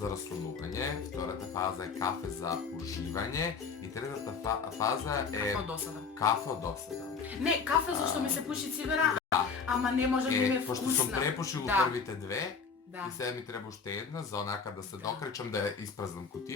раслонување, втората фаза е кафе за уживање и третата фаза е Како досада. кафе од досада. Не, кафе зашто ми се пуши цигара, Да. ама не може да ми е Пошто сум вкусна. препушил Да. првите две, Да. и сега ми треба уште една за онака да се Да. докречам да ја испразнам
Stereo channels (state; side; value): quieter; right; 5.4 dB